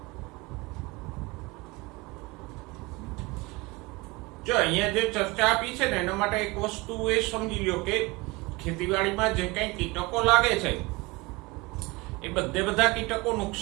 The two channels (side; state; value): left; quieter; 23.9 dB